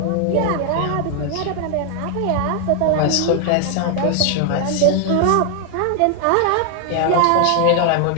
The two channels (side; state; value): both; different; correlation 0.00